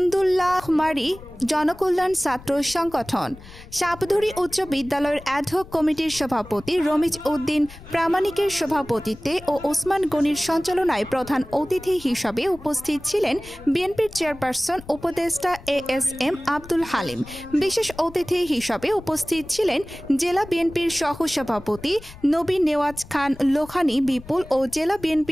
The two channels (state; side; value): noise; left; rumble, 18 dB below the sound